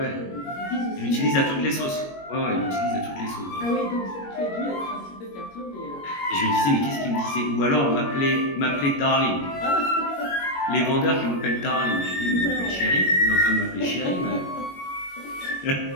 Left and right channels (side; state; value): right; late; 21 ms